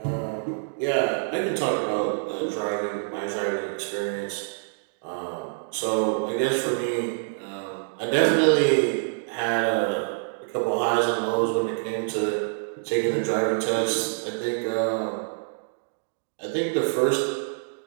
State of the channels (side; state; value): left; silent; digital silence